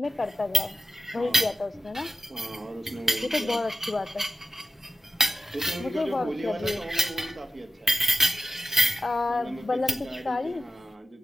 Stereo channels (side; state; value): both; normal; correlation 0.95